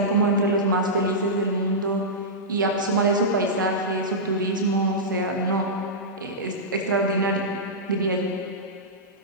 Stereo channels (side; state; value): both; normal; correlation -0.13